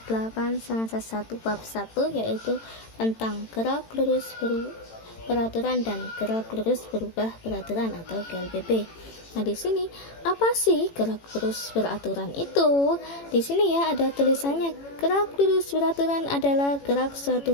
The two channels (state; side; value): late; right; 18 ms